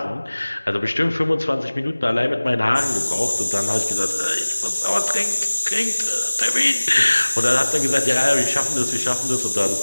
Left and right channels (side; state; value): both; inverted; correlation -1.00